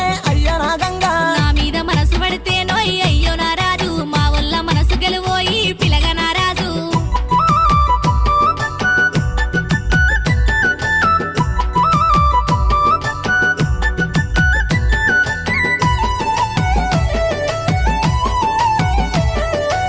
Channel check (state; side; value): identical; both; correlation 1.00